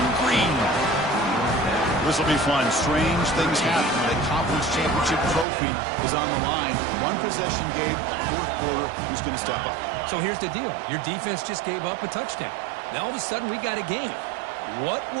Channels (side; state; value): left; drops out; at 5.5 s